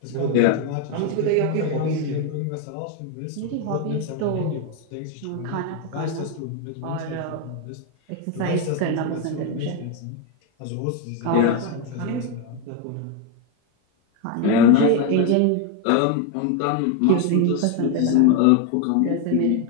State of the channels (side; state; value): both; different; correlation 0.01